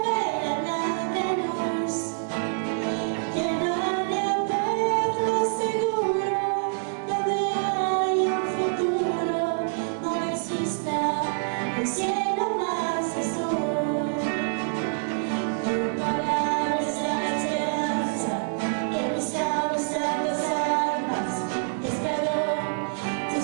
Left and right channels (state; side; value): silent; left; digital silence